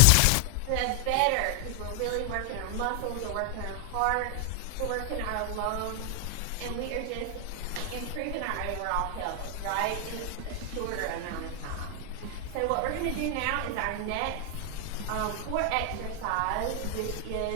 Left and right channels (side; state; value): both; different; correlation 0.00